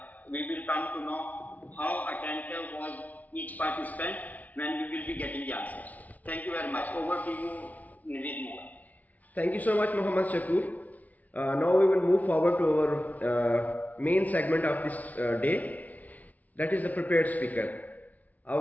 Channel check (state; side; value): late; right; 0.074 ms